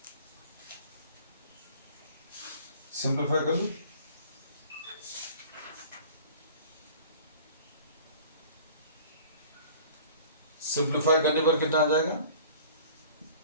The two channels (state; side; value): inverted; both; correlation -0.47